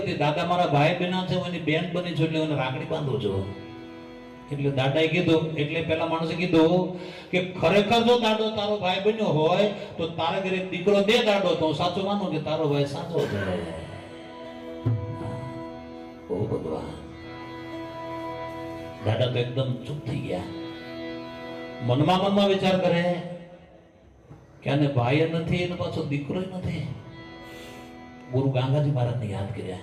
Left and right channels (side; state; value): both; identical; correlation 1.00